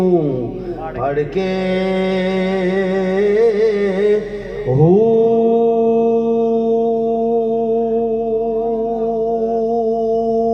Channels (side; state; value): both; identical; correlation 1.00